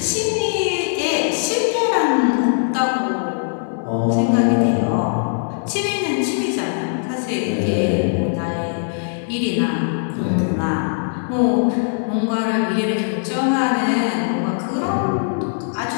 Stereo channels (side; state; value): right; silent; digital silence